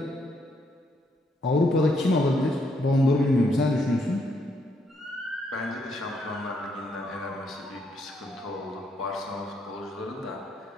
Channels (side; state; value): both; normal; correlation 0.74